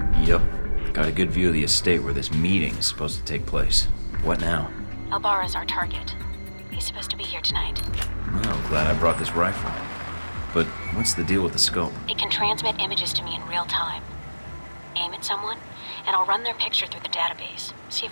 Yep. Got a good view of the estate where this meeting is supposed to take place. What now? Albara's our target. He's supposed to be here tonight. Well, glad I brought this rifle. But what's the deal with the scope? It can transmit images to me in real time. Aim at someone, and I'll run their picture through the database. See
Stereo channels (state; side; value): inverted; both; correlation -1.00